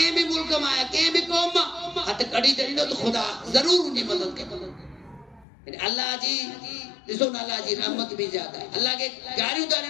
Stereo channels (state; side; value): drops out; right; at 5.5 s